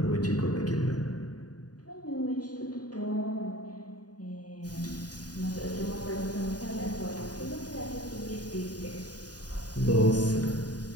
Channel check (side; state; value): right; late; 0.68 ms